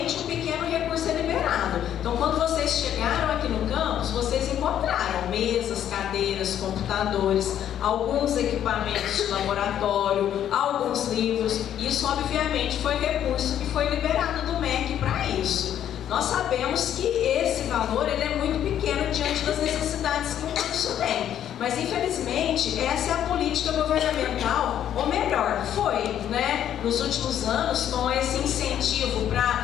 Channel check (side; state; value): right; quieter; 10.4 dB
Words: um pequeno recurso é liberado. Então, quando vocês chegaram aqui no campus, vocês encontraram mesas, cadeiras, computadores, alguns equipamentos de laboratório, alguns livros. Isso, obviamente, foi recurso que foi liberado do MEC para isso. Nós sabemos que esse valor ele é muito pequeno diante das necessidades que um curso tem. Mas, infelizmente, essa é a política governamental, ou melhor, foi, né, nos últimos anos, com esse incentivo